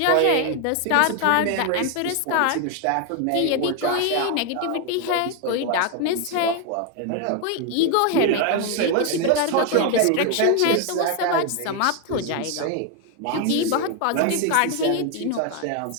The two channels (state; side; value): different; both; correlation 0.01